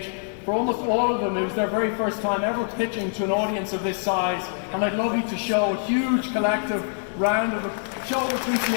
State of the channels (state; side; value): silent; right; 62 dB below the other